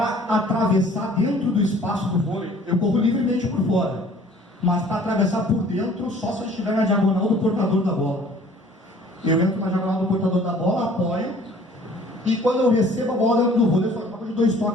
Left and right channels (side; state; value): both; normal; correlation 0.53